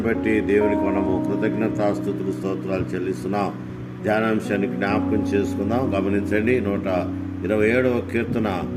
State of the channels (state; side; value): identical; both; correlation 1.00